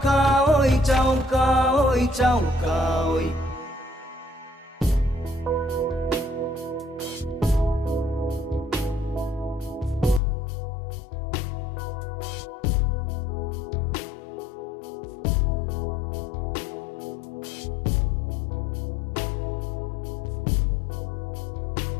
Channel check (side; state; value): right; drops out; at 10.2 s